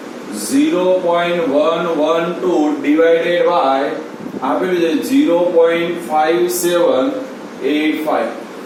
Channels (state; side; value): identical; both; correlation 1.00